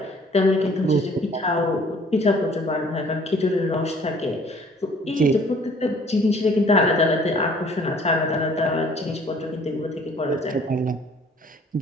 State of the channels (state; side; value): normal; both; correlation 0.56